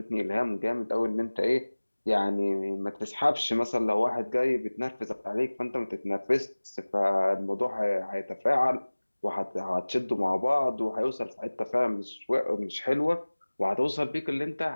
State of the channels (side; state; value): both; inverted; correlation -1.00